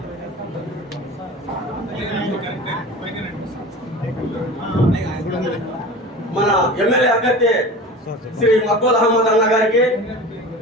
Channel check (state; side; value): normal; both; correlation 0.35